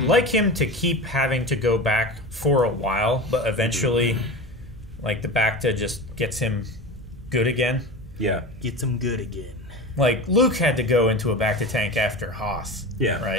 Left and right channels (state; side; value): normal; both; correlation 0.29